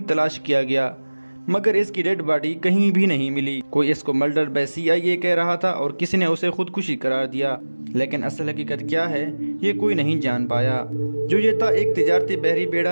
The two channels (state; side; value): inverted; both; correlation -1.00